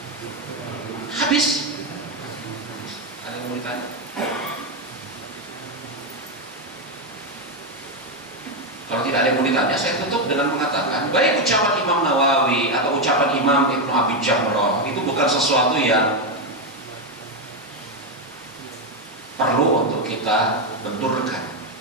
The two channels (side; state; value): both; normal; correlation 0.06